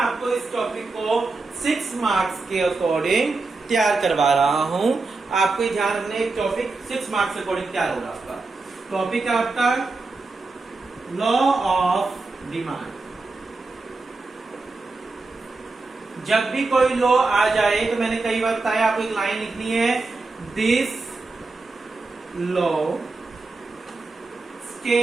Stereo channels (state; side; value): quieter; left; 3.7 dB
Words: इस टॉपिक को 6 मार्क्स के अकॉर्डिंग तैयार करवा रहा हूं। आपको ध्यान रखना है, टॉपिक 6 मार्क्स के अकॉर्डिंग तैयार होगा आपका। टॉपिक है आपका लॉ ऑफ डिमांड। जब भी कोई लॉ आ जाए तो मैंने कई बार बताया, आपको एक लाइन लिखनी है, दिस लॉ